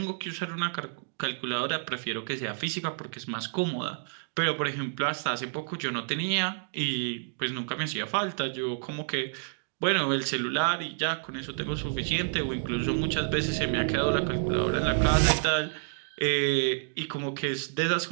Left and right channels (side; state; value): left; silent; digital silence